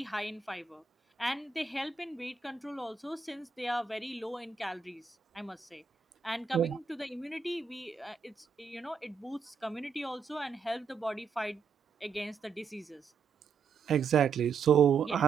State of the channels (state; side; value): quieter; left; 5.6 dB